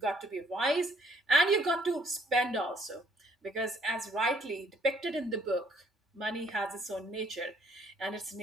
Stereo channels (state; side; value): normal; both; correlation 0.64